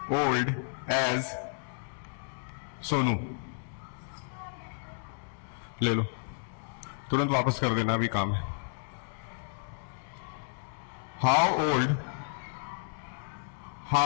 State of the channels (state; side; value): silent; right; digital silence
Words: old as Sonu. ले लो, तुरंत वापस कर देना, अभी काम है। How